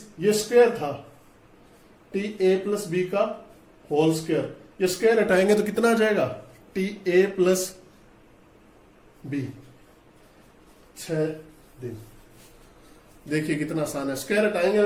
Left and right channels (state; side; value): identical; both; correlation 1.00